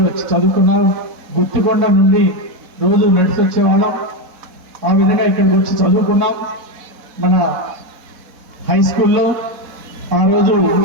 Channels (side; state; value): left; late; 4.1 ms